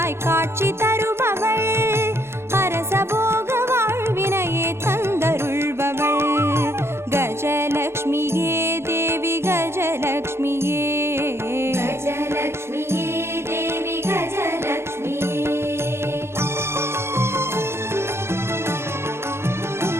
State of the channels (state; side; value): late; left; 0.12 ms